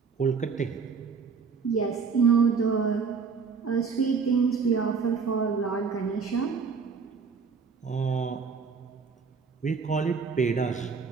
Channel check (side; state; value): left; quieter; 5.5 dB